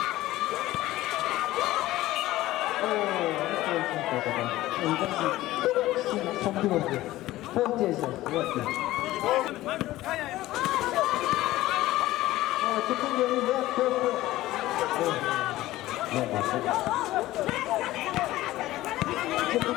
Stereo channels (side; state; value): right; quieter; 16.3 dB